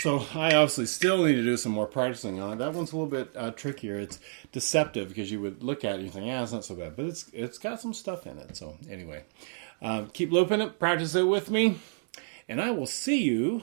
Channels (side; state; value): left; silent; digital silence